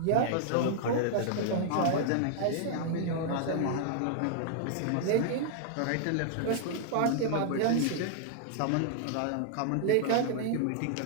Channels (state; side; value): different; both; correlation -0.01